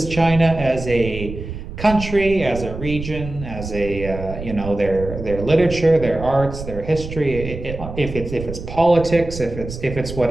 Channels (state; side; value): noise; right; rumble, 9 dB below the sound